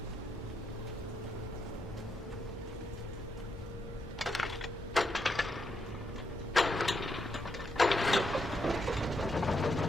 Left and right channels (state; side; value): normal; both; correlation 0.81